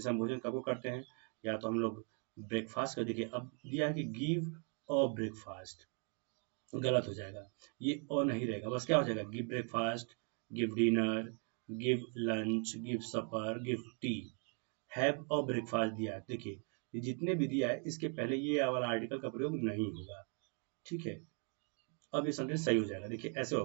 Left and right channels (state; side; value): quieter; left; 39.3 dB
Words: हम भोजन कब करते हैं, या तो हम लोग ब्रेकफास्ट का, देखिए अब दिया है कि गिव अ ब्रेकफास्ट, गलत हो जाएगा, ये और नहीं रहेगा, बस क्या हो जाएगा, give breakfast, give dinner, give lunch, give supper, give tea. Have a breakfast दिया है, देखिए ये जितने भी दिया है इसके पहले ये वाला आर्टिकल का प्रयोग नहीं होगा, ठीक है। अब ये सेंटेंस सही हो जाएगा, देखिए ऐसे